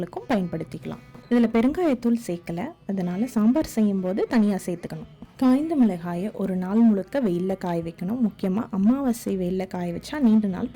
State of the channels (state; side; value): identical; both; correlation 1.00